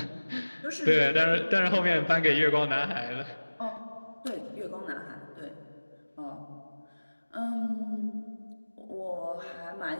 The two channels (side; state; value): both; inverted; correlation -1.00